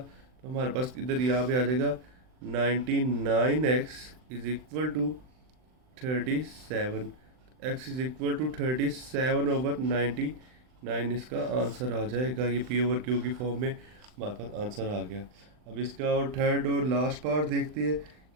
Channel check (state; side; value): late; left; 39 ms